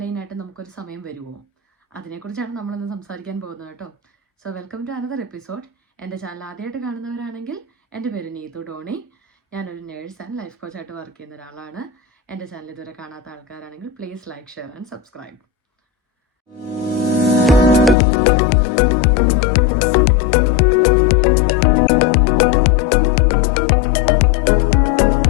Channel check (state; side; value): drops out; right; at 17.9 s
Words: നമുക്കൊരു സമയം വരുമോ? അതിനെക്കുറിച്ചാണ് നമ്മളിന്ന് സംസാരിക്കാൻ പോകുന്നത് കേട്ടോ. So welcome to another episode. എൻ്റെ ചാനൽ ആദ്യമായിട്ട് കാണുന്നവരാണെങ്കിൽ എൻ്റെ പേര് നീതു ഡോണി. ഞാനൊരു നേഴ്സ് ആൻഡ് ലൈഫ് കോച്ചായിട്ട് വർക്ക് ചെയ്യുന്ന ഒരാളാണ്. എൻ്റെ ചാനൽ ഇതുവരെ കാണാത്ത ആൾക്കാരാണെങ്കിൽ please like, share and subscribe.